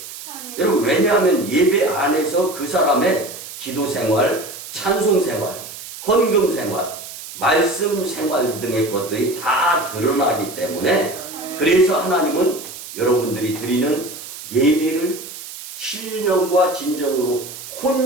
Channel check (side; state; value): right; noise; hiss, 12 dB below the sound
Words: 아멘. 여러분, 왜냐하면 예배 안에서 그 사람의 기도 생활, 찬송 생활, 헌금 생활, 말씀 생활 등의 것들이 다 드러나기 때문에, 그래서 하나님은 여러분들이 드리는 예배를 신령과 진정으로